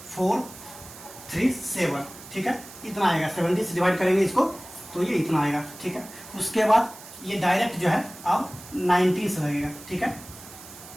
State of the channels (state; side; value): noise; right; hiss, 17 dB below the sound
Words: 4 3 7। ठीक है, इतना आएगा, 17 से डिवाइड करेंगे इसको तो ये इतना आएगा। ठीक है, उसके बाद ये डायरेक्ट जो है अब 19 से लगेगा। ठीक है,